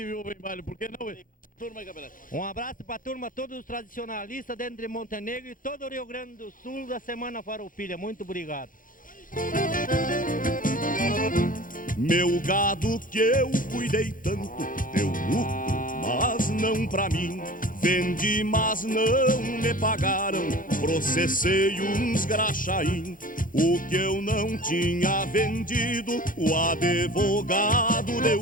viúva em baile, por que não? turma aí, Capelete. Um abraço para a turma, todos os tradicionalistas dentro de Montenegro e todo o Rio Grande do Sul da Semana Farroupilha. Muito obrigado. Meu gado que eu cuidei tanto, deu lucro, mas não pra mim. Vendi, mas não me pagaram, processei uns graxaim. O que eu não tinha vendido, o advogado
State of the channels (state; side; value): late; right; 0.40 ms